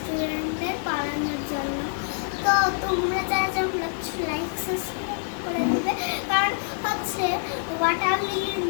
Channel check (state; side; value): silent; right; 61 dB below the other